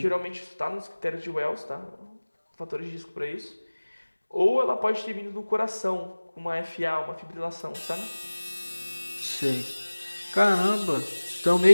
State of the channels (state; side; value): inverted; both; correlation -1.00